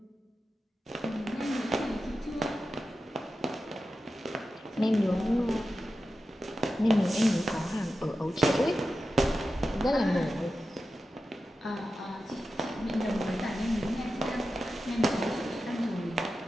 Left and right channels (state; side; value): normal; both; correlation 0.92